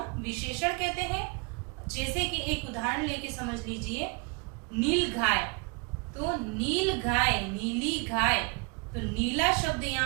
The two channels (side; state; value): left; quieter; 31.6 dB